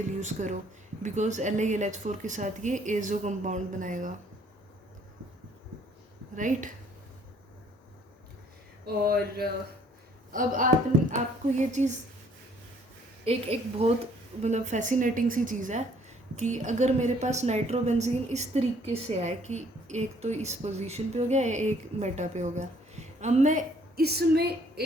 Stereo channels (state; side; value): normal; both; correlation 0.61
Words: यूज़ करो, बिकॉज LiLH4 के साथ ये एजो कंपाउंड बनाएगा, राइट. और अब आपको ये चीज़ एक बहुत मतलब फैसिनेटिंग सी चीज़ है कि अगर मेरे पास नाइट्रोबेंजीन इस तरीके से आए कि एक तो इस पोजीशन पे हो गया, एक मेटा पे हो गया, अब मैं इसमें